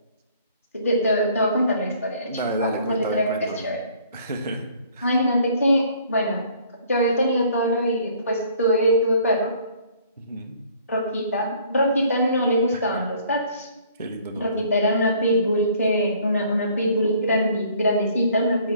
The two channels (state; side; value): inverted; both; correlation -0.58